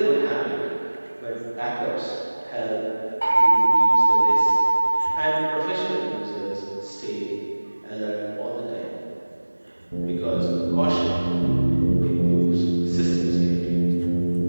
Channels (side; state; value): both; inverted; correlation -1.00